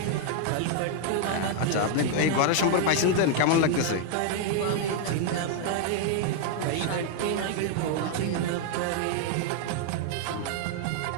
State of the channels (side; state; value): both; different; correlation 0.00